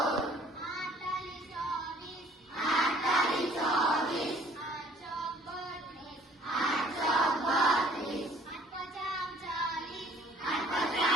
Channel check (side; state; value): both; normal; correlation 0.57